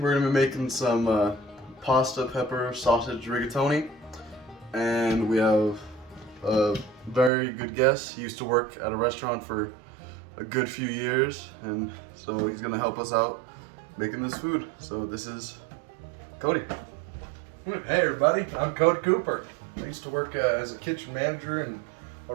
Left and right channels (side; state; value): left; drops out; at 7.3 s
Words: going to be making some pasta, pepper, sausage rigatoni. And we have a very good guest. He used to work at a restaurant for a good few years, and so he's going to help us out making this food. So this is Cody. Hey everybody, I'm Cody Cooper. I used to work as a kitchen manager in a